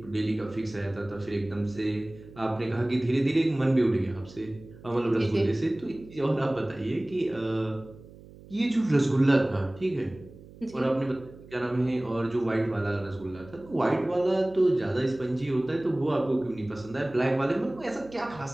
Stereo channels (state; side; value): noise; right; hum, 20 dB below the sound